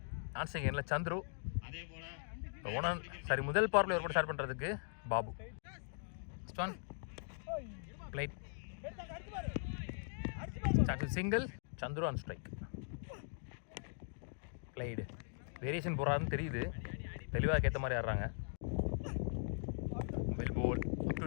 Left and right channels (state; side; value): silent; right; digital silence